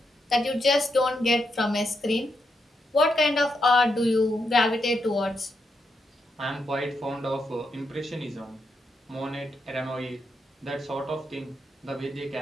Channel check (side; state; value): both; normal; correlation 0.82